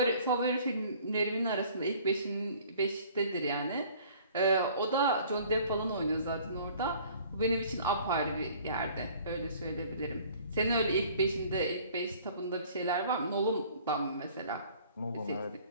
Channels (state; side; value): inverted; both; correlation -0.52